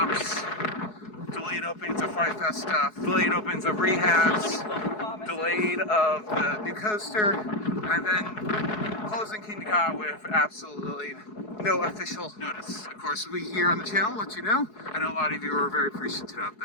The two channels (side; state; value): right; late; 4.7 ms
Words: delayed openings of Fright Fest stuff, delayed openings of rehabs, delayed of the new coaster, and then closing Kingda Ka with absolutely no official notice. Of course, we here on the channel let you know. I know a lot of you are very appreciative of